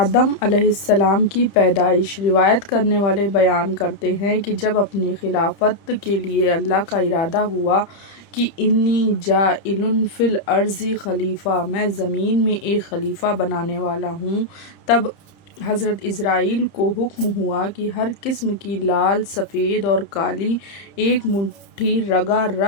علیہ السلام کی پیدائش روایت کرنے والے بیان کرتے ہیں کہ جب اپنی خلافت کے لیے اللہ کا ارادہ ہوا کہ انی جاعل فی الارض خلیفہ، میں زمین میں ایک خلیفہ بنانے والا ہوں، تب حضرت اسرائیل کو حکم ہوا کہ ہر قسم کی لال، سفید اور کالی ایک مٹھی رگا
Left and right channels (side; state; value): right; late; 30 ms